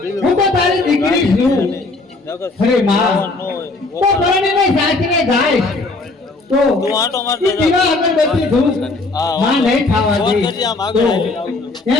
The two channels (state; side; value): quieter; right; 3.3 dB